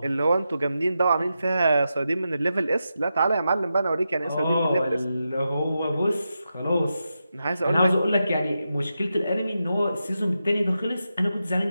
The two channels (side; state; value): both; inverted; correlation -0.88